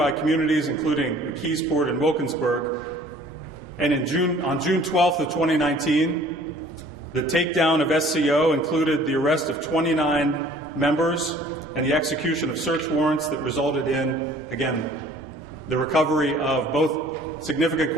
communities, including McKeesport and Wilkinsburg. And on June 12th of 2019, the takedown of SCO included the arrest of 29 members and the execution of search warrants that resulted in, again, the recovery of both significant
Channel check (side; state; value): both; normal; correlation 0.53